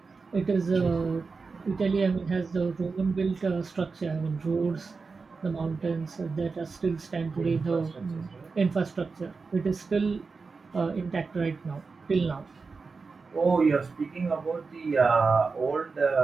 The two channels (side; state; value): left; quieter; 4.5 dB